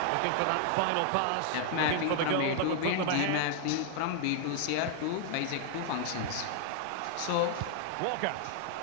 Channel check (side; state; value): both; different; correlation 0.00